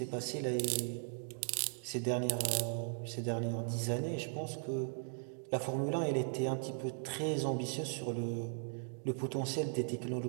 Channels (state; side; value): silent; left; digital silence